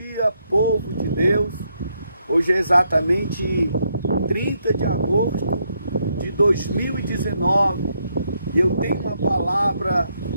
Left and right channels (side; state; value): both; inverted; correlation -0.77